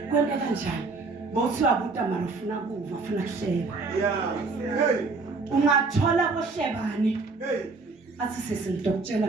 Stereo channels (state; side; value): quieter; left; 4.0 dB